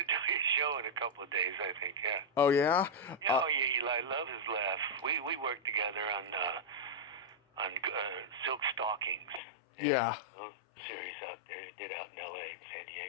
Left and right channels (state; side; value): drops out; right; at 9.4 s